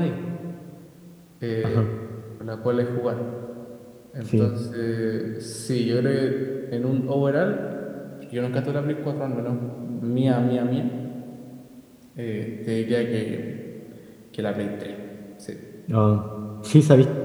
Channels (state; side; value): identical; both; correlation 1.00